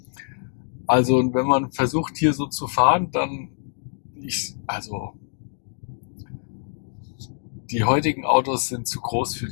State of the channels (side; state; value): right; silent; 62 dB below the other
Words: Also und wenn man versucht hier so zu fahren, dann also die heutigen Autos sind zu groß für